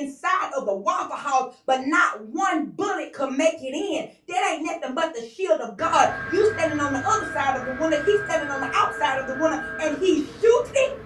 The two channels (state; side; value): identical; both; correlation 1.00